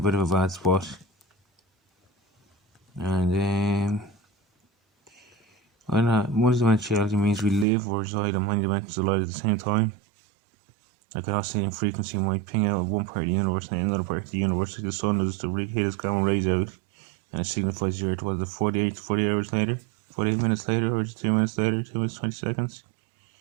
of a bad spot. And multidimensionality means we live or reside in many dimensions of light at the same time. Like an oscillating frequency might ping out of one part of the universe and another part of the universe, like the sun does to hit its gamma rays out, and it signifies the Earth. Was it 40 hours later, 48 minutes later, or 2 minutes later, 2 minutes 20 seconds?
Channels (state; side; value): drops out; left; at 7.7 s